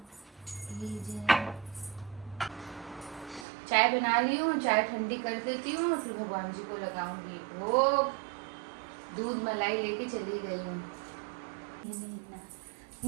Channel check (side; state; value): left; drops out; at 3.5 s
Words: चाय बना ली हूँ, चाय ठंडी कर देती हूँ, फिर भगवान जी को लगाऊंगी भोग। दूध मलाई लेके चली गई हूँ।